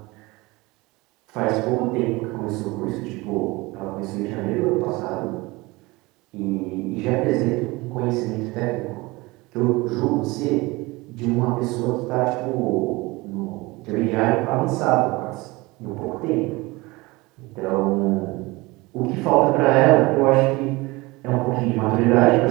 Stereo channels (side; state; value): left; quieter; 22.7 dB